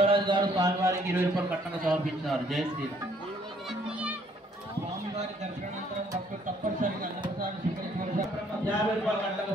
గారు స్వామివారికి 20 రూపాయలు కట్టంగా సమర్పించారు. జై శ్రీరామ్. స్వామివారి దర్శనానంతరం భక్తులు తప్పనిసరిగా అన్నప్రసాదం స్వీకరించవలసి 50 రూపాయలు కట్టంగా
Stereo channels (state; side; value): normal; both; correlation 0.64